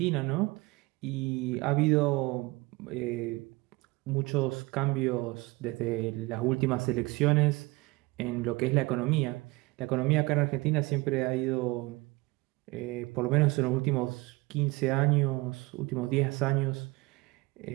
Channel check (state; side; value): quieter; left; 23.0 dB